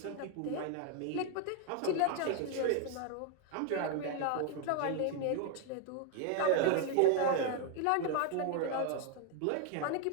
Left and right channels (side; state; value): both; different; correlation 0.01